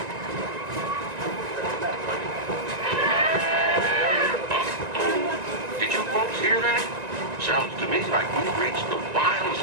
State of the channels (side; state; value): left; late; 1.9 ms